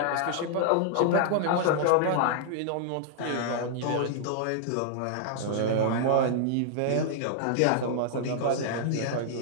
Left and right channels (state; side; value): different; both; correlation -0.01